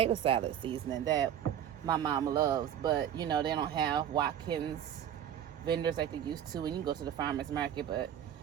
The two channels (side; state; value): left; quieter; 9.9 dB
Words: salad seasoning that my mom loves, but you know they don't have Watkins vendors like they used to, and you can go to the farmer's market. But